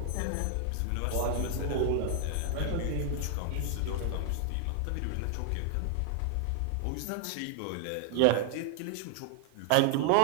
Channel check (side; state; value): both; different; correlation 0.00